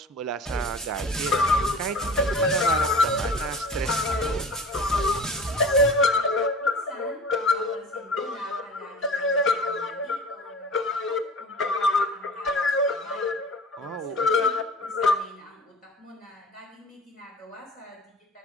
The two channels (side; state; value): both; normal; correlation 0.40